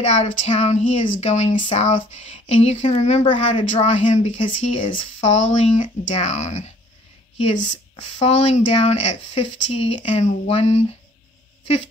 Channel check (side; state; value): both; normal; correlation 0.57